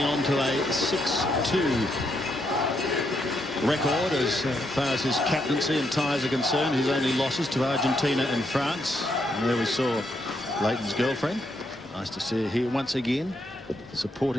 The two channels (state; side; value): normal; both; correlation 0.78